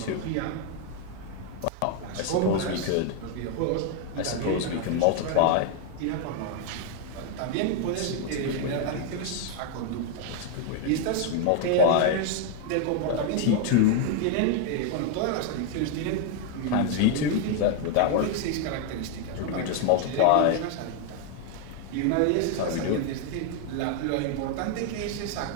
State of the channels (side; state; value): both; different; correlation 0.00